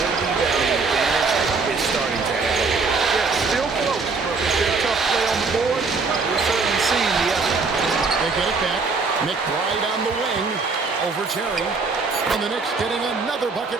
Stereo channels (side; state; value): left; quieter; 4.4 dB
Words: rebounding advantage is starting to add up. Yeah, still close, but with their tough play on the board, we're certainly seeing the effort. They get it back. McBride on the wing over Terry. And the Knicks getting another bucket